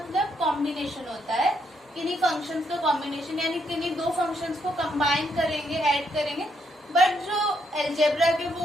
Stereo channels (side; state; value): both; normal; correlation 0.76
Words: कॉम्बिनेशन होता है, किन्हीं फंक्शंस का कॉम्बिनेशन, यानी किन्हीं दो फंक्शंस को कंबाइन करेंगे, ऐड करेंगे। बट जो अलजेब्रा के